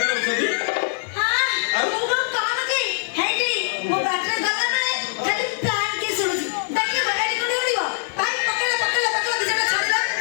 छथि हां मु काम की हेटी मो बैटरी गला माने खाली प्लान की सुनुची देखि बड़ी कोडी उड़िबो भाई पकड़ दिजटा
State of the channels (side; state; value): right; silent; digital silence